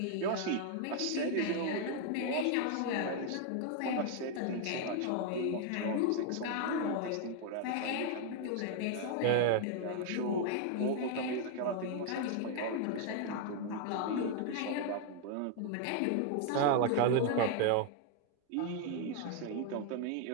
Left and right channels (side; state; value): both; different; correlation 0.00